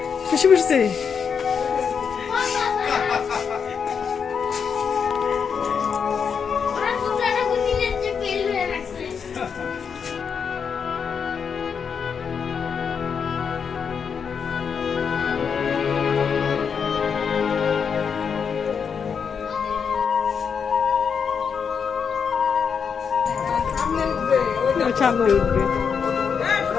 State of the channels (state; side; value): quieter; right; 6.5 dB